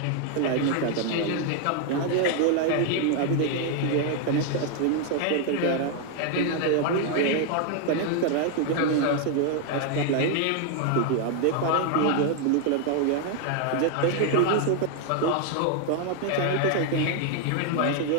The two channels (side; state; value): both; different; correlation 0.00